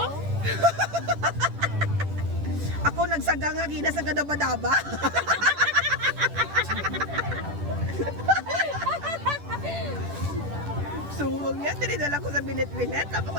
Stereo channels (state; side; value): late; left; 10 ms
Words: ako nagsaga nga gina sa gadaba-daba. Suwag yan, tinidala ko sa binet-binet, tapos ko